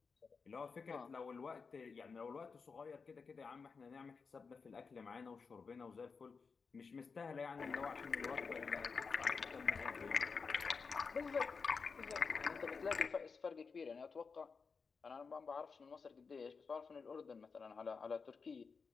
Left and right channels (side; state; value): right; quieter; 5.1 dB